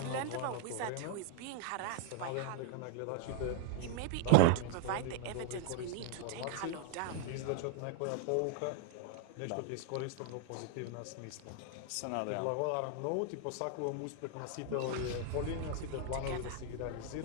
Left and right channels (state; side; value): different; both; correlation 0.01